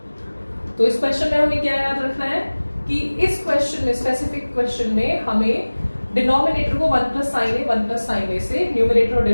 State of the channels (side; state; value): both; inverted; correlation -1.00